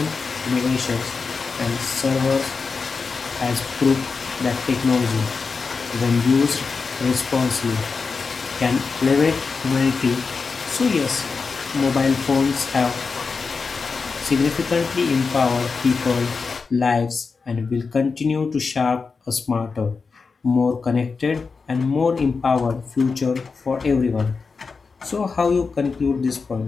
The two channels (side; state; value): right; quieter; 4.8 dB